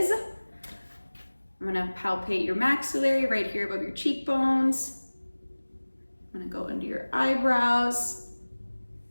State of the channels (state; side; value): inverted; both; correlation -1.00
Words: I'm gonna palpate your maxillary right here above your cheekbones. I'm gonna go under your eyebrows.